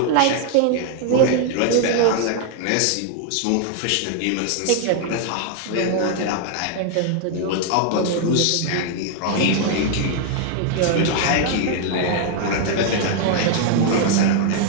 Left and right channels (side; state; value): both; different; correlation 0.00